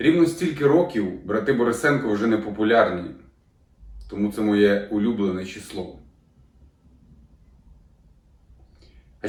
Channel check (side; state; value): both; identical; correlation 1.00